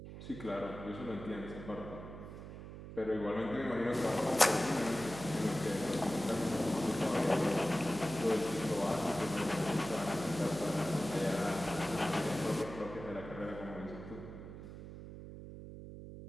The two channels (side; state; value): right; noise; hum, 12 dB below the sound